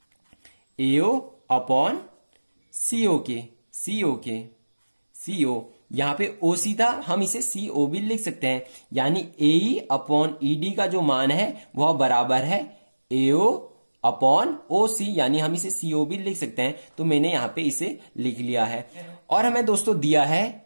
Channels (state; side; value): inverted; both; correlation -1.00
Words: AO अपॉन CO यहां पे O सीधा हम इसे CO भी लिख सकते हैं, यानी AE अपॉन ED का जो मान है वह बराबर है AO अपॉन OC, यानी हम इसे CO भी लिख सकते हैं। तो मैंने यहां पे इसे लिख लिया है। और हमें दोस्तों दिया है,